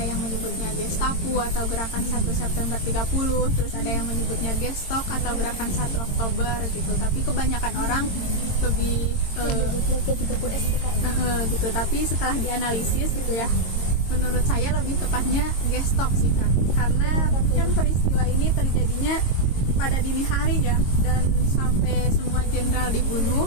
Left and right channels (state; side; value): late; right; 22 ms